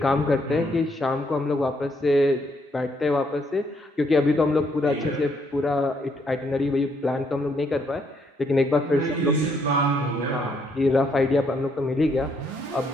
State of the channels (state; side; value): normal; both; correlation 0.72